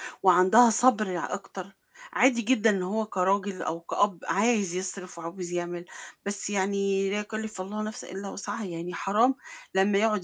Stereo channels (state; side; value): identical; both; correlation 1.00